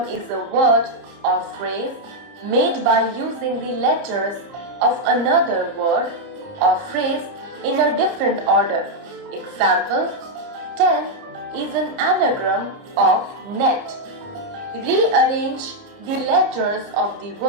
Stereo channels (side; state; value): left; late; 30 ms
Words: is a word or phrase made by using the letters of another word or phrase in a different order. Example: 10 is an anagram of net. Rearrange the letters of the